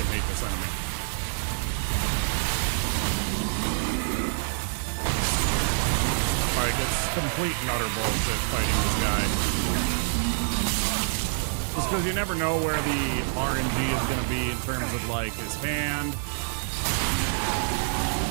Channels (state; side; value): silent; left; digital silence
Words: hate this enemy. Like, it's complete and utter bullshit fighting this guy. Just because you never know where the RNG is going to be in terms of, like, his hand.